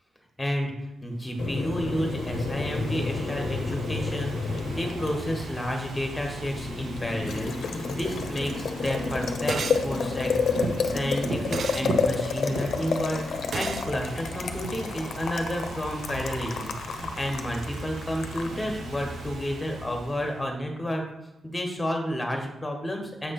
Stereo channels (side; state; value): both; normal; correlation 0.86